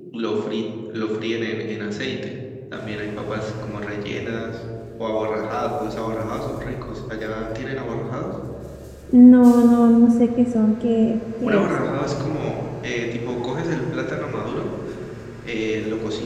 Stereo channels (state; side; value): identical; both; correlation 1.00